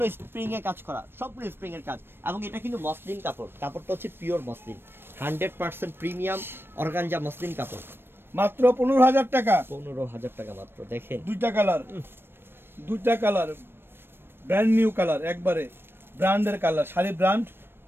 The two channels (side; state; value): left; late; 0.10 ms